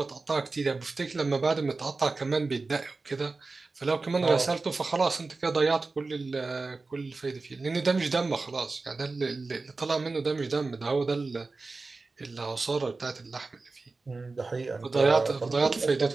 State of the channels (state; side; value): quieter; left; 3.8 dB